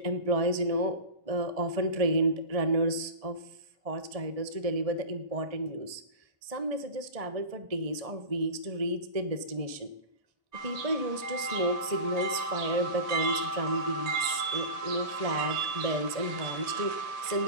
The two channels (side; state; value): left; late; 1.6 ms